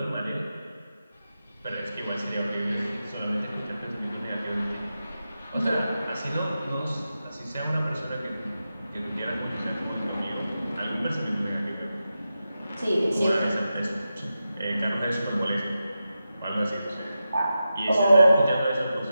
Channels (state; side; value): inverted; both; correlation -0.91